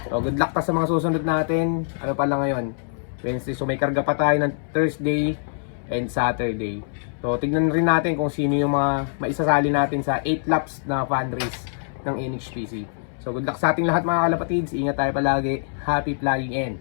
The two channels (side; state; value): right; silent; 62 dB below the other